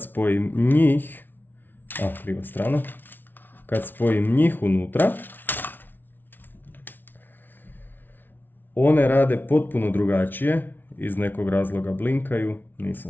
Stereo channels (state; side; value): late; right; 0.093 ms